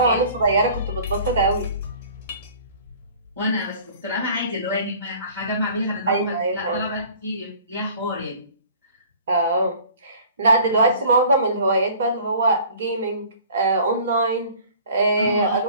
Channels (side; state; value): both; inverted; correlation -0.49